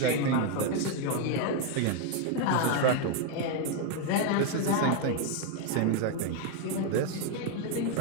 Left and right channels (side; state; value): both; different; correlation 0.01